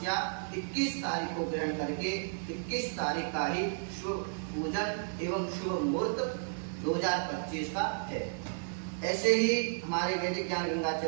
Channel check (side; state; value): left; silent; digital silence